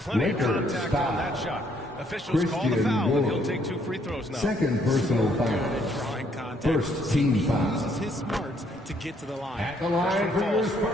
of contact on that shot. Officials call the foul, and he'll take 2 free throws now. Second personal foul. Drawing contact. First team foul. Uses his smarts to get to the line. At the line for your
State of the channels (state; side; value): normal; both; correlation 0.68